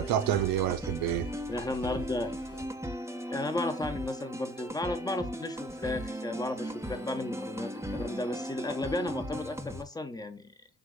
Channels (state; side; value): normal; both; correlation 0.53